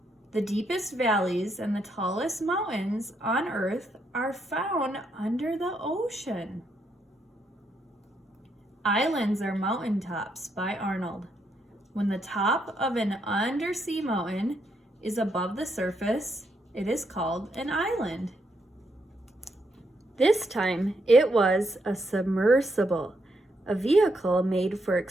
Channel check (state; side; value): normal; both; correlation 0.78